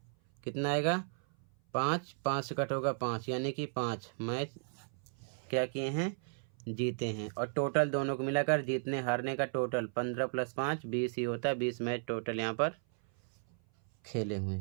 कितना आएगा? 5, 5 से कट होगा 5, यानी कि 5 मैच क्या किए हैं? जीते हैं, और टोटल दोनों को मिलाकर जीतने हारने का टोटल 15 + 5 20 ही होता है। 20 मैच टोटल यहाँ पर खेले हुए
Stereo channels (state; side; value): silent; left; 55 dB below the other